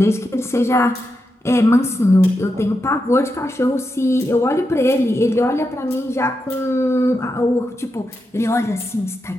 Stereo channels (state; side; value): normal; both; correlation 0.87